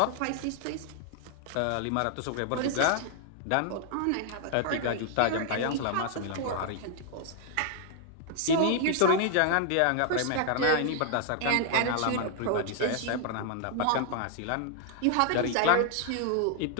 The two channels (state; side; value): different; both; correlation 0.00